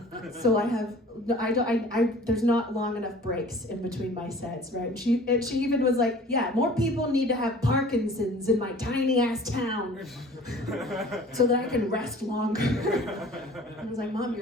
So there's not long enough breaks in between my sets, right? And she even was like, yeah, more people need to have Parkinson's in my tiny ass town so that I can rest longer. I was like, Mom,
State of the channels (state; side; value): normal; both; correlation 0.47